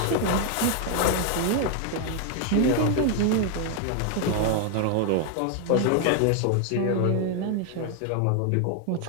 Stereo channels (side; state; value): both; different; correlation 0.01